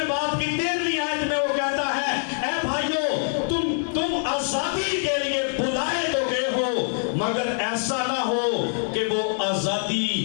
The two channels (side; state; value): right; silent; digital silence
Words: باب کی 13ویں آیت میں وہ کہتا ہے اے بھائیو تم آزادی کے لیے بلائے تو گئے ہو، مگر ایسا نہ ہو کہ وہ